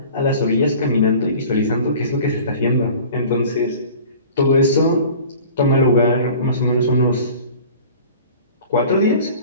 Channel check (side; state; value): both; inverted; correlation -0.44